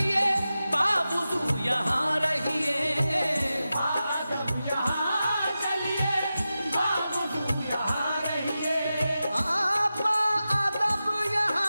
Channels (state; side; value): inverted; both; correlation -0.93